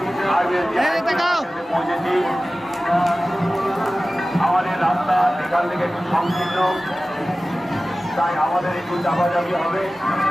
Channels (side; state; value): both; normal; correlation 0.96